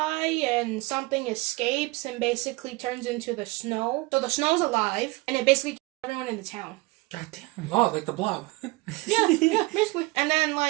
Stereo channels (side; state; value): left; quieter; 23.2 dB